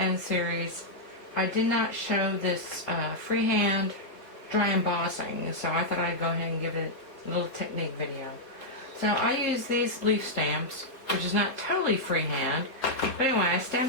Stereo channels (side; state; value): right; late; 3.8 ms